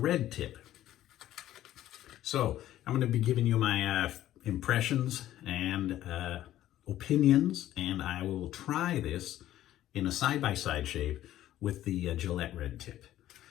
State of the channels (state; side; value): quieter; right; 13.3 dB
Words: tip. So I'm going to be giving you my impressions and opinions, and I will try this in a side-by-side shave with the Gillette Red Tip.